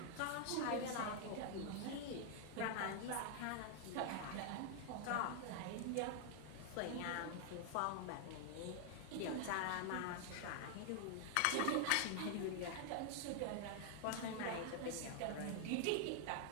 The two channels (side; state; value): both; different; correlation 0.00